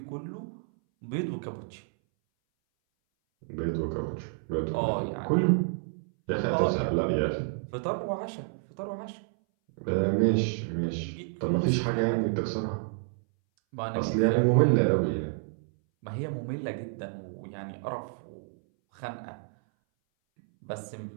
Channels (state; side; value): silent; left; 58 dB below the other